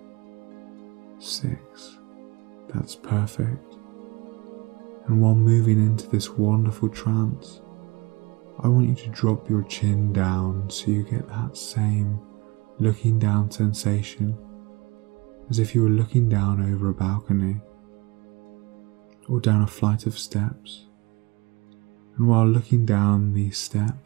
6. That's perfect. And while moving into this wonderful trance, I want you to drop your chin down so you get that same looking down sensation, as if you were looking down over a balcony or down a flight of steps. And while looking down these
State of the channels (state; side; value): quieter; left; 24.8 dB